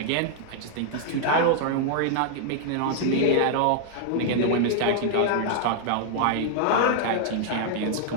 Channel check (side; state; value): both; different; correlation 0.00